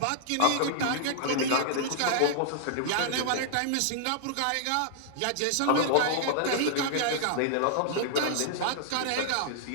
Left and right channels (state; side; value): different; both; correlation -0.01